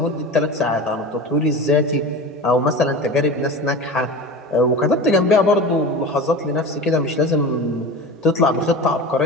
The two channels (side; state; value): both; normal; correlation 0.31